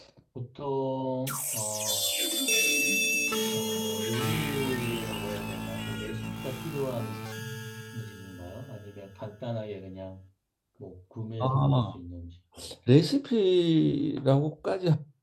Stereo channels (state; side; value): identical; both; correlation 1.00